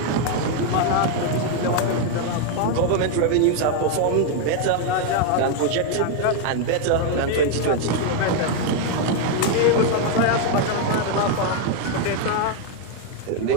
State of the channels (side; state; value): both; different; correlation 0.01